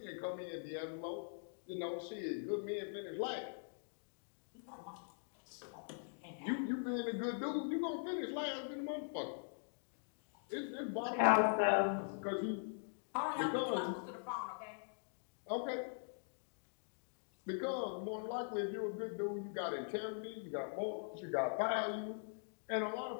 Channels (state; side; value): silent; right; digital silence